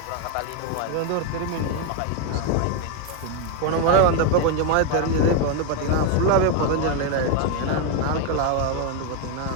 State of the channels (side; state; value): both; different; correlation 0.01